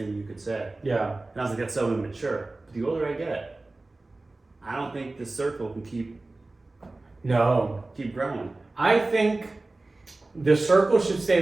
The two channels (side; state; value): left; quieter; 3.1 dB